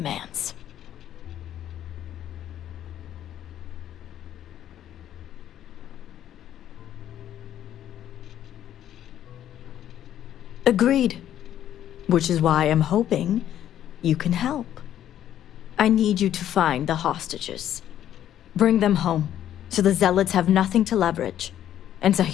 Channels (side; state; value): right; quieter; 11.2 dB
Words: Agreed. Which is why I'm hoping you can help. I need you to find the hostages. Bring them home, so the zealots have nothing to leverage, and